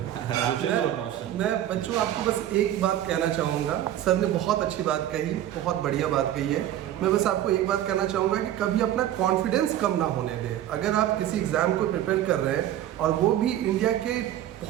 मैं बच्चों आपको बस एक बात कहना चाहूँगा। सर ने बहुत अच्छी बात कही, बहुत बढ़िया बात कही है। मैं बस आपको एक बात कहना चाहूँगा कि कभी अपना कॉन्फिडेंस कम ना होने दें। अगर आप किसी एग्ज़ाम को प्रिपेयर कर रहे हैं, और वो भी इंडिया के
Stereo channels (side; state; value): left; quieter; 12.2 dB